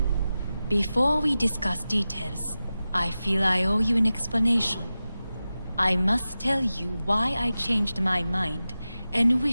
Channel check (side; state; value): both; inverted; correlation -0.94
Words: Before we discuss details, I feel I owe you an explanation. I must tell you why I changed my mind and